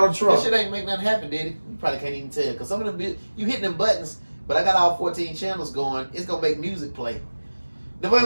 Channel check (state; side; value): inverted; both; correlation -1.00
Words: Trump. That shit ain't make nothing happen, did it? You probably can't even tell. Because some of them, you hitting them buttons, but I got all 14 channels going. It's gonna make music play. If